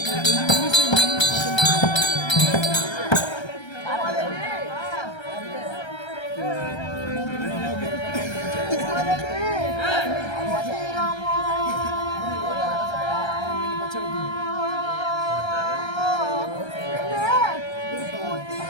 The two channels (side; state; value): right; late; 1.3 ms